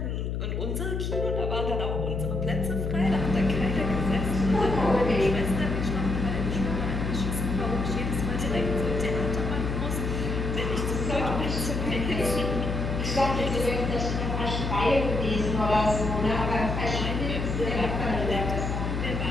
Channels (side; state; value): left; noise; hum, 2 dB below the sound